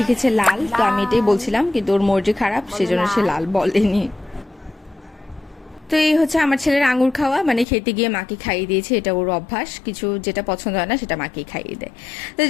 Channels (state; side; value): drops out; right; at 7.7 s